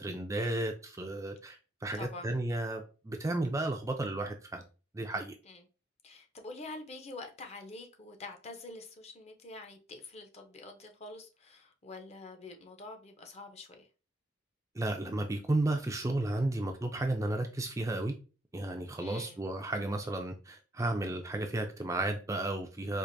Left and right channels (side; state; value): both; normal; correlation 0.73